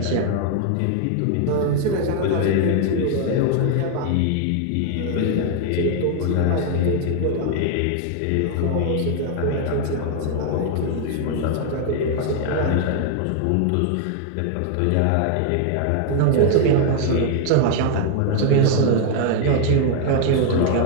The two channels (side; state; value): both; different; correlation 0.00